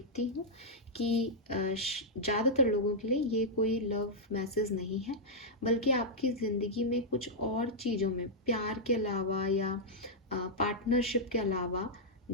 हूँ कि ज़्यादातर लोगों के लिए ये कोई लव मैसेज नहीं है, बल्कि आपकी ज़िंदगी में कुछ और चीज़ों में, प्यार के अलावा या पार्टनरशिप के अलावा,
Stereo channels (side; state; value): both; normal; correlation -0.07